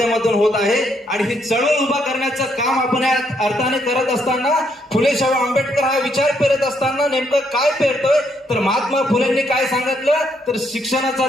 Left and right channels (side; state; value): both; normal; correlation 0.74